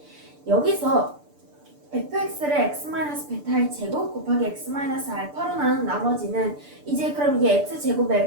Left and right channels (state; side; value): late; left; 6.8 ms